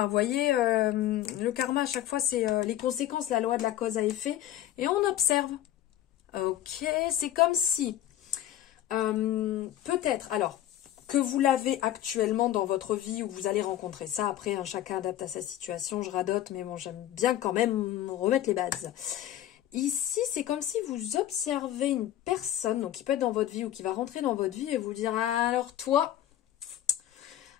Vous voyez, le karma, à chaque fois, c'est les conséquences, la loi de la cause à effet. Et on observe. Ok, c'est comme si, peut-être, alors, que vous l'avez actuellement dans votre vie ou vous allez rencontrer ça. Après, hein, chacun adapte à sa situation, je radote, mais bon, j'aime bien quand même remettre les bases. Ici, c'est comme si vous observez une personne, donc qui peut être dans votre vie ou qui va rentrer dans votre vie et vous dire, alors toi,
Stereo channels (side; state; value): right; quieter; 12.5 dB